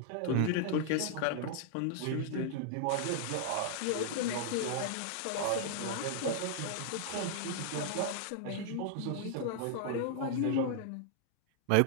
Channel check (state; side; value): different; both; correlation -0.01